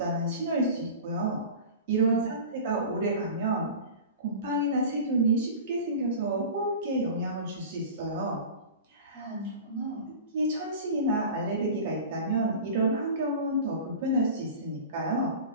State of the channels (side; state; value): both; inverted; correlation -0.34